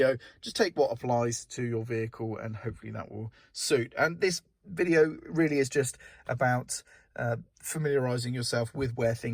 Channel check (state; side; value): identical; both; correlation 1.00